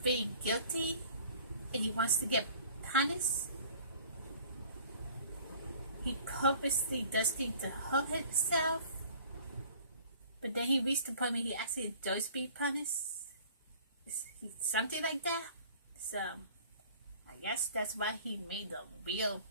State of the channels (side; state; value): both; inverted; correlation -0.50